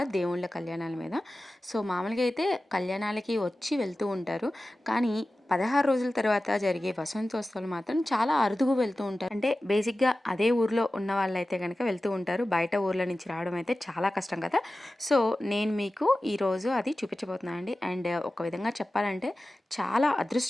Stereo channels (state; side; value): normal; both; correlation 0.95